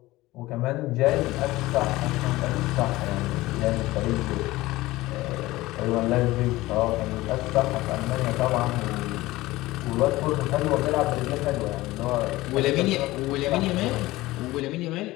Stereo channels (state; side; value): quieter; right; 18.5 dB